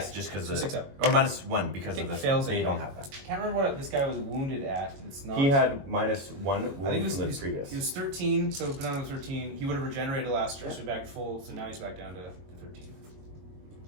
just because So of 6 up. Or -1 because Okay, of the fails they anyway. don't have that. I can't remember what this guy was wounded at. It's not. He had -1 I think wound from the previous. He was 13, so put on 13. He would have regenerated last turn, so he's back full. So now he's back down to 13.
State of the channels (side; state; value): left; late; 22 ms